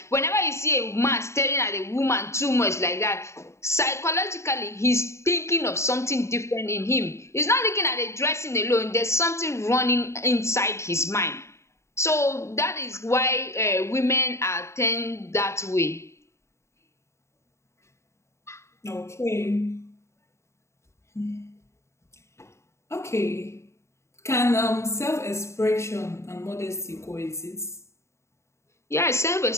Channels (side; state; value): right; late; 0.14 ms